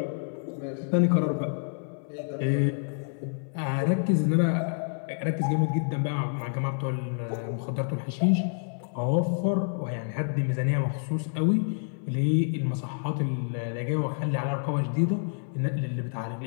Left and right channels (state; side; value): silent; right; 59 dB below the other